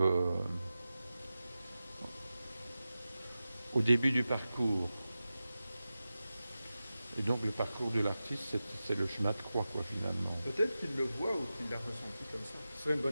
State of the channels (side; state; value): both; inverted; correlation -0.94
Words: au début du parcours. Et donc le parcours de l'artiste, c'est le chemin de croix, quoi, finalement. Peut-être qu'il le voit ou qu'il l'a ressenti comme ça. Ce serait une